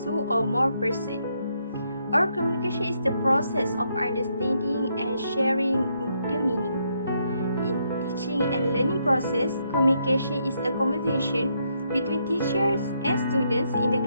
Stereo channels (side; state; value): both; inverted; correlation -0.76